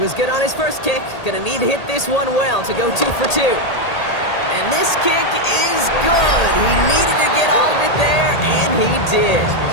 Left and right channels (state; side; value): late; right; 1.8 ms